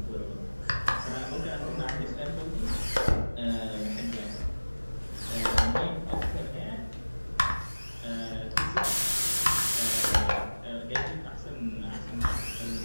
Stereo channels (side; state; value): both; inverted; correlation -1.00